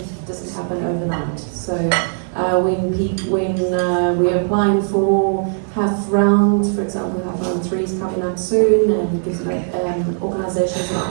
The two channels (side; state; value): left; silent; digital silence